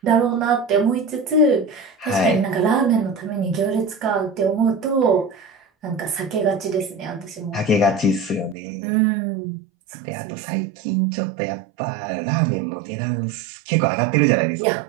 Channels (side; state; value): left; drops out; at 8.6 s